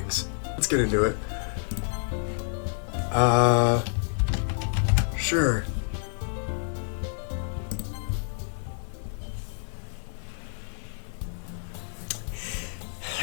Let's get into it. Sure.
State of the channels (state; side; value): silent; right; digital silence